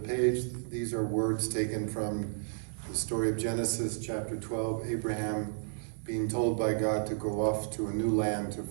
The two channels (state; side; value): silent; left; digital silence